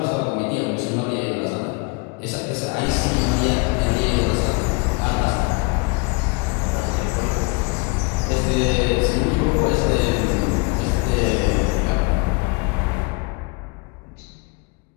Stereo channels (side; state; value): right; quieter; 29.2 dB